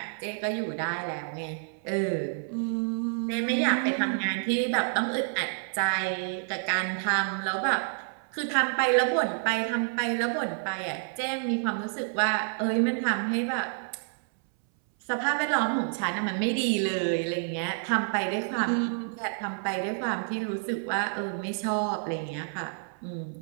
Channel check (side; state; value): left; silent; 59 dB below the other